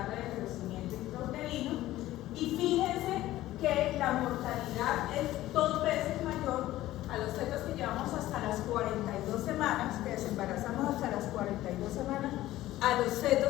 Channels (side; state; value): right; quieter; 15.4 dB